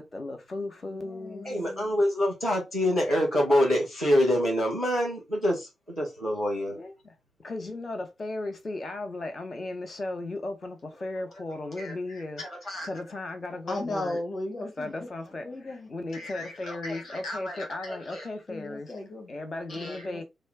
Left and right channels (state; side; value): normal; both; correlation 0.87